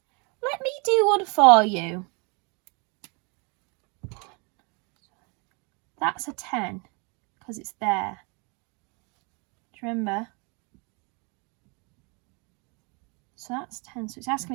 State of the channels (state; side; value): quieter; left; 32.2 dB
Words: me do one for you. That's a 10 because it's there. Do you remember? So that's 10. So it's